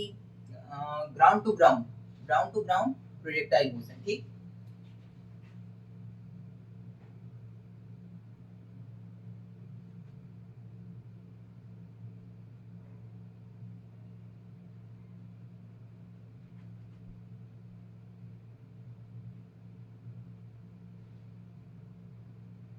ground to ground projectile motion. ठीक,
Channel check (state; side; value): identical; both; correlation 1.00